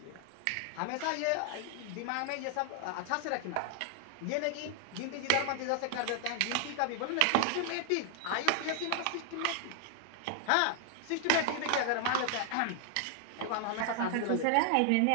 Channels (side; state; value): both; different; correlation 0.00